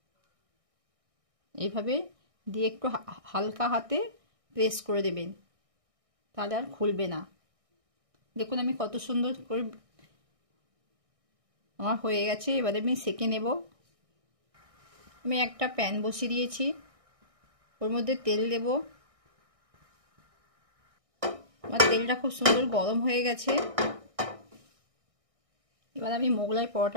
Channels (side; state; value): left; late; 1.6 ms